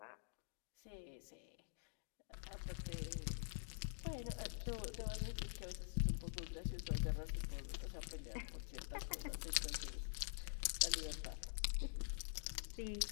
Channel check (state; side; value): silent; right; digital silence